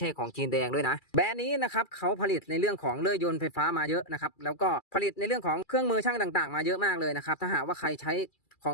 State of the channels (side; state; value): right; late; 2.3 ms